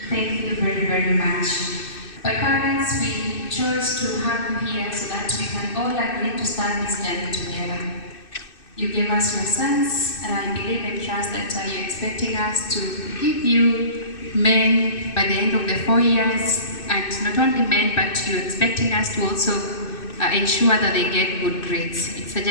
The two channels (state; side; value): late; right; 2.6 ms